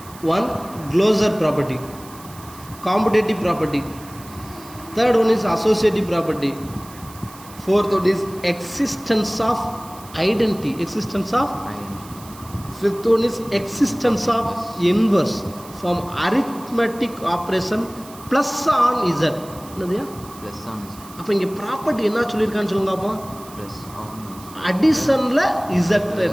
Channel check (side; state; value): right; noise; hiss, 20 dB below the sound